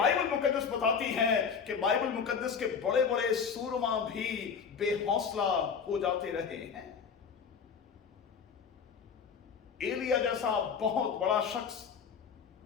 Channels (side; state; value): right; quieter; 6.4 dB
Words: مقدس بتاتی ہے کہ بائبل مقدس کے بڑے بڑے سورما بھی بے حوصلہ ہو جاتے رہے ہیں۔ एलिया जैसा बहुत बड़ा शख्स